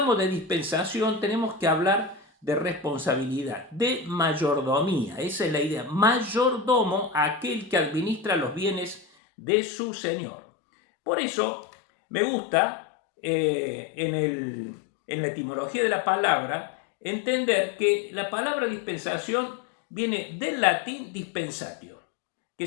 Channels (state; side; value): drops out; right; at 9.1 s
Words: de dispensación, tenemos que hablar de responsabilidad, de mayordomía. Esa es la idea. Mayordomo, aquel que administra los bienes de su Señor. Por eso, me gusta en la etimología de la palabra entender que la palabra dispensación viene del latín dispensatio, que